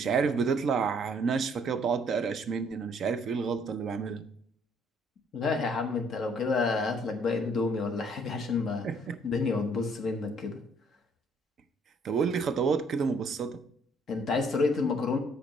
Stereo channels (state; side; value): normal; both; correlation 0.63